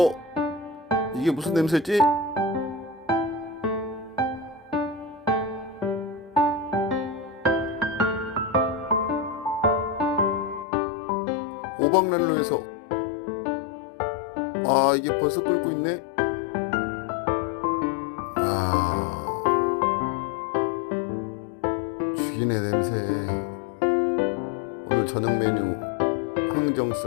이게 무슨 냄새지? 오박난로에서 이게 벌써 끓고 있네. 아, 죽이네 냄새. 오늘 저녁 메뉴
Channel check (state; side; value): drops out; right; at 10.7 s